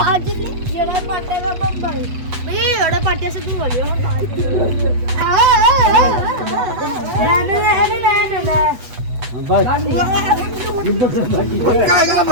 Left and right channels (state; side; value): late; left; 8.2 ms